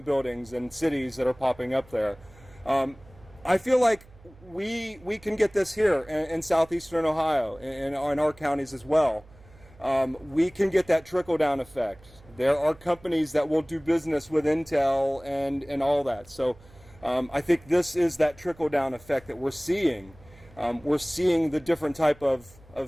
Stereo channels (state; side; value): noise; right; hum, 25 dB below the sound